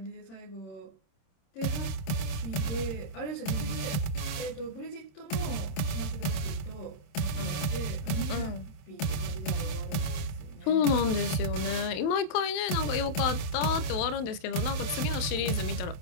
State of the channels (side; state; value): right; late; 27 ms